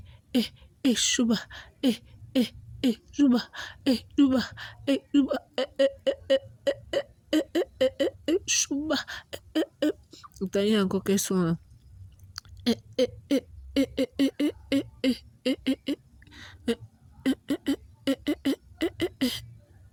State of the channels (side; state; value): both; identical; correlation 1.00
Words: chouba, chouba, chouba, chouba, T'as eu encore quel son là?